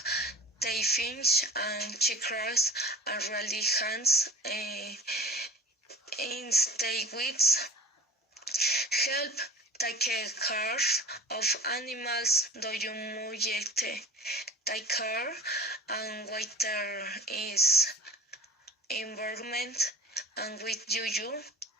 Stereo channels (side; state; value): both; normal; correlation 0.42